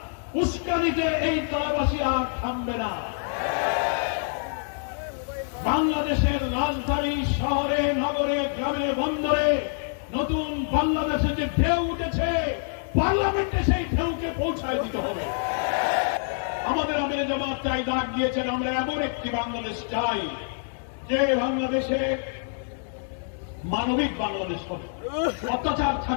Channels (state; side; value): silent; right; digital silence